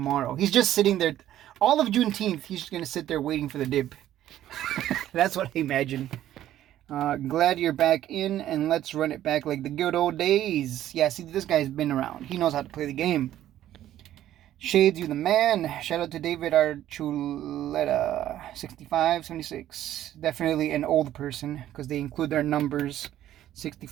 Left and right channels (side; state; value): left; quieter; 12.6 dB